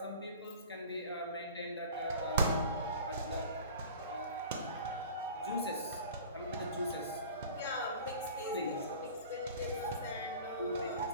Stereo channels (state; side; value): inverted; both; correlation -0.41